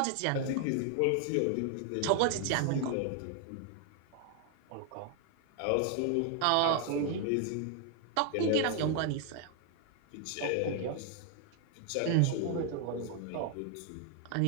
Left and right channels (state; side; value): different; both; correlation 0.00